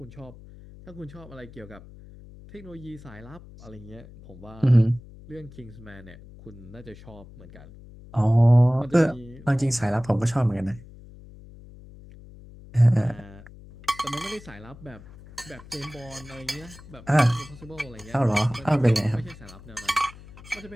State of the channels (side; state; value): left; noise; hum, 19 dB below the sound